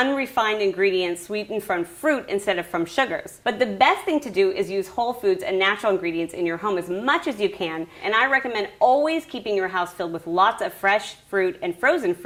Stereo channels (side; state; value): both; identical; correlation 1.00